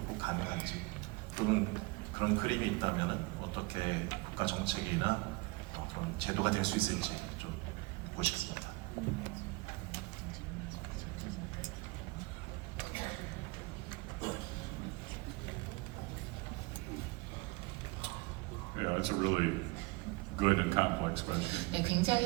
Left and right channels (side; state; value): left; quieter; 24.5 dB